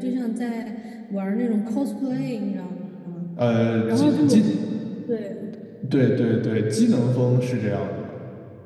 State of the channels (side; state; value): both; identical; correlation 1.00